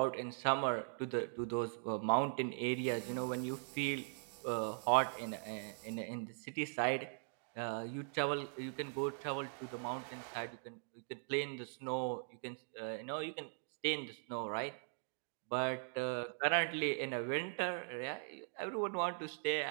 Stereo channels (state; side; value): silent; left; digital silence